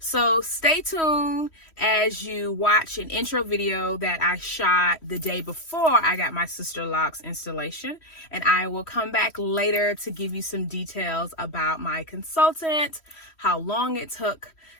stay tuned as you watch an intro video that I shot the day before I got my Sisterlock installation, and I will come back later to give you some details about my consultant, how long it took,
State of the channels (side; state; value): right; late; 3.1 ms